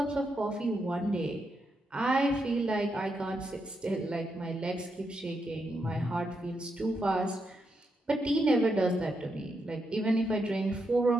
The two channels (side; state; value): both; normal; correlation 0.82